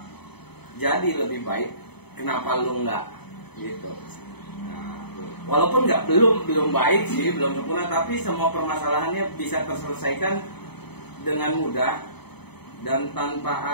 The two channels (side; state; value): right; late; 0.98 ms